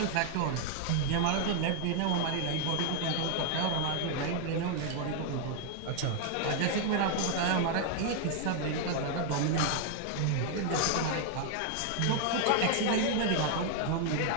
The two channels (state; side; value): different; both; correlation 0.00